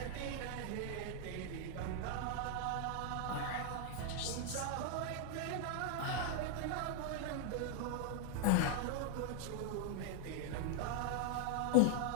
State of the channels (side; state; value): both; different; correlation 0.00